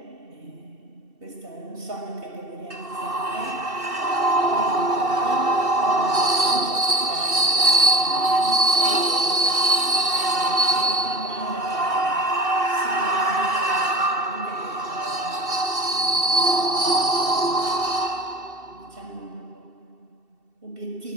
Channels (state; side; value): late; left; 2.7 ms